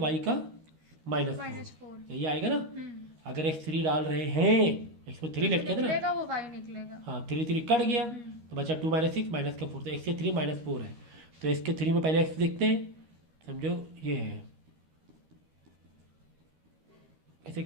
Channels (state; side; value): late; left; 13 ms